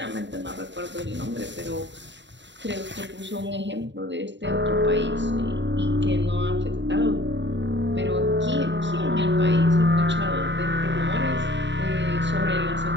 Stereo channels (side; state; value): left; late; 0.53 ms